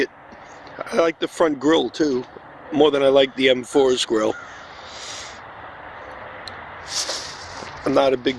I like the front grille too, more than I like the M4's grille. I'm not a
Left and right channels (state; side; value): identical; both; correlation 1.00